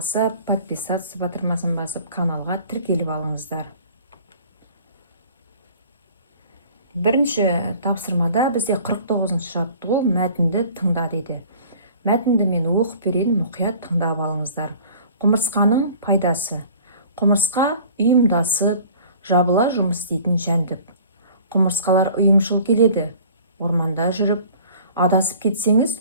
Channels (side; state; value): both; inverted; correlation -0.48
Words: подписаться батырмасын басып, каналға тіркеліп алыңыздар. Бірінші тапсырмада бізде 49-ші жаттығу мәтінді тыңда дейді. Мәтінді мен оқып берейін, мұқият тыңдап алыңыздар. Құмырсқаның пайдасы. Құмырсқа ұйымдасып, жабыла жұмыс істейтін жәндік. Құмырсқалар ұйымшыл келеді. Орманда жүріп, адасып кетсеңіз,